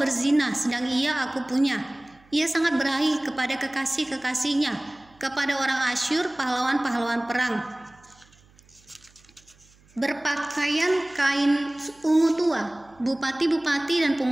sedang ia aku punya. Ia sangat berahi kepada kekasih-kekasihnya, kepada orang Asyur, pahlawan-pahlawan perang. Berpakaian kain ungu tua, bupati-bupati dan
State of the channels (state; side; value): noise; right; hum, 29 dB below the sound